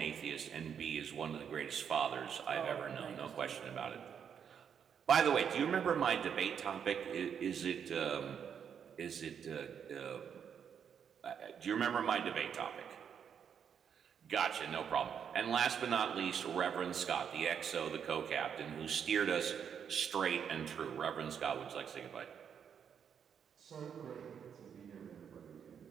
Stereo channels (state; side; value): quieter; left; 7.7 dB